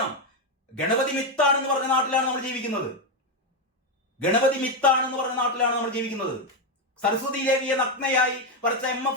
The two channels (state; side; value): normal; both; correlation 0.06